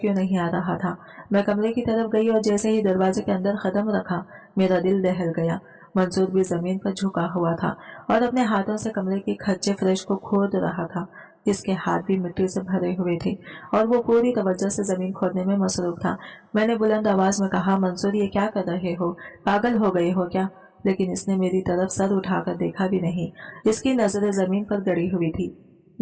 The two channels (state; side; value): identical; both; correlation 1.00